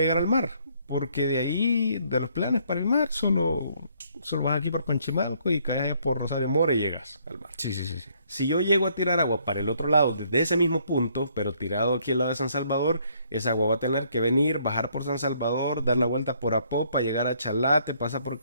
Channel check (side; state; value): both; inverted; correlation -0.67